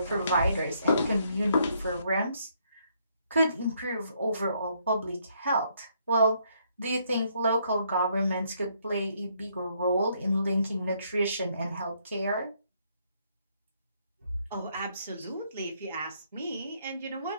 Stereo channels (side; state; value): both; inverted; correlation -0.71